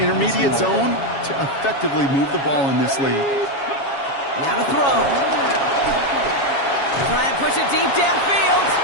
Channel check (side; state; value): right; late; 7.3 ms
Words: zone to effectively move the ball in this league. Now to throw. Try and push it deep downfield.